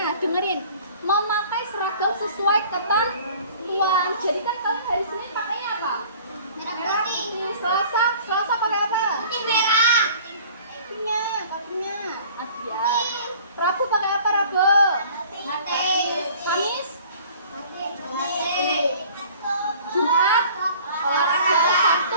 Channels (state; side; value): inverted; both; correlation -0.49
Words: sesuai ketentuan. Jadi kan kalian hari Senin pakainya apa? Merah putih. Selasa pakai apa? Putih merah. Kakinya. Ya. Rabu pakai apa Rabu? Kamis? Jumat? Olahraga. Sabtu